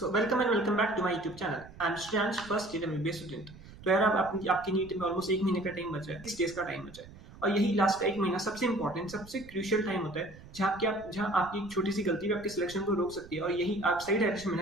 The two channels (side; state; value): right; noise; rumble, 19 dB below the sound